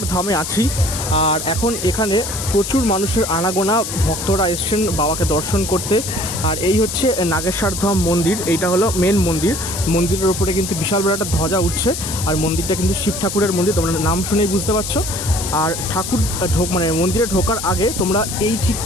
ধামে আছি। আর এখন এখানে প্রচুর মানুষের আনাগোনা, ভক্তরা এসছেন বাবাকে দর্শন করতে। আর এই হচ্ছে নাগেশ্বর ধাম মন্দির, এইটা হলো মেন মন্দির। মন্দিরের ওপরে কিন্তু বিশাল বড় একটা ধ্বজা উঠছে। আর মন্দিরটা কিন্তু শিব ঠাকুরের মন্দির, তোমরা নাম শুনেই বুঝতে পারছো। আর ঠাকুর মন্দিরে ঢোকার আগে তোমরা এই ঠিক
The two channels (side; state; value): left; noise; hiss, 6 dB below the sound